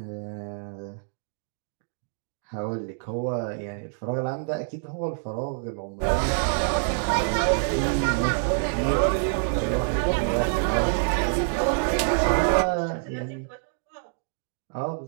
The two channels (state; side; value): silent; left; digital silence